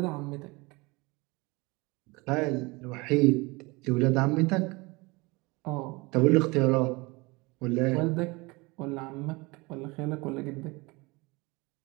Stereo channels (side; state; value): left; quieter; 25.0 dB